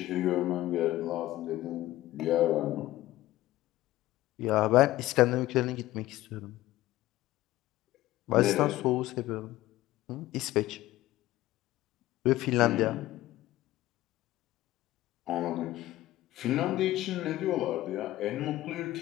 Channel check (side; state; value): right; quieter; 16.0 dB